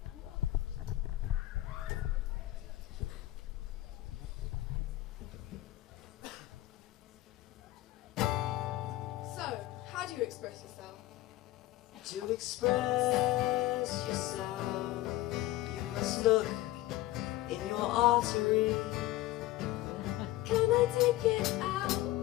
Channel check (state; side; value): quieter; right; 16.5 dB